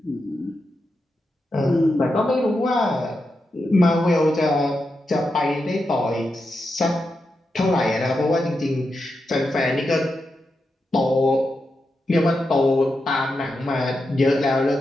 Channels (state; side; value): normal; both; correlation 0.87